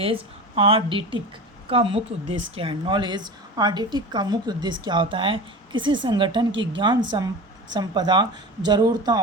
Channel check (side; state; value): both; normal; correlation 0.31